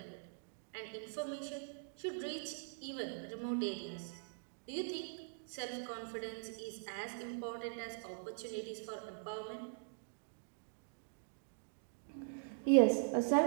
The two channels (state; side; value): silent; left; digital silence